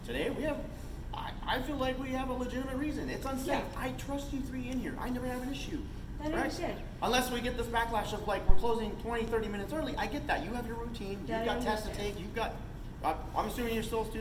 Today, I feel like we have a legitimate reason. It's unsafe. Yeah. I trust you three in here. I never have an issue. I understand. Unless we get this backlash of like, we're closing 20, 30 minutes early. I get that. You have your routine. That You've I got tests to understand. take. You've got, I'm assuming you're still a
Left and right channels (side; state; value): both; identical; correlation 1.00